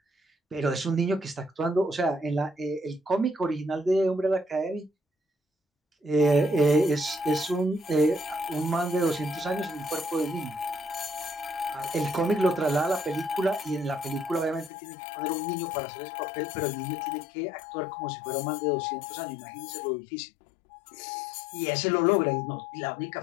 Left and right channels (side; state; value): right; drops out; at 14.7 s